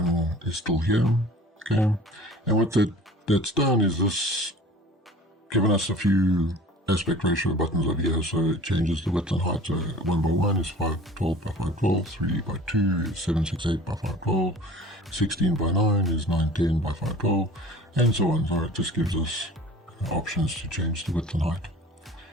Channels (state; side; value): normal; both; correlation 0.44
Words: is still here. Okay, and what that's done is this given us a few aspect ratio buttons over here. So it changes the width and height. So 1 by 1 is 512 by 512, 3 by 2 is 768 by 512, 16 by 9 is 910 by 512, and so on. So it just gives us options to change the width and height.